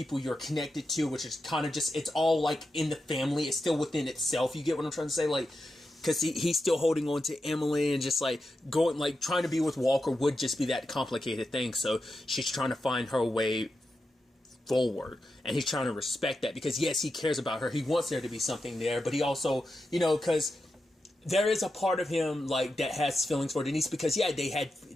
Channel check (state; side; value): normal; both; correlation 0.88